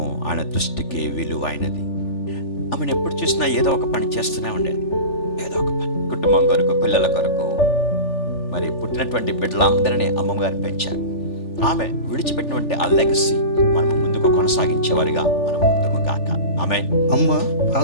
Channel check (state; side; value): late; right; 3.4 ms